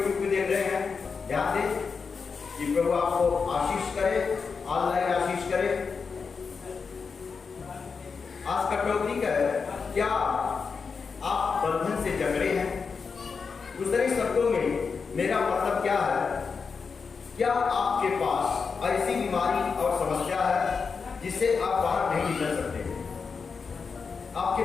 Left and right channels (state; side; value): quieter; right; 5.3 dB